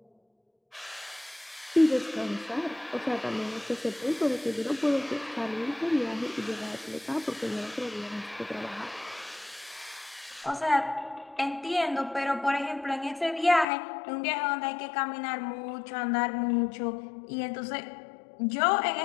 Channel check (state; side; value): drops out; right; at 13.7 s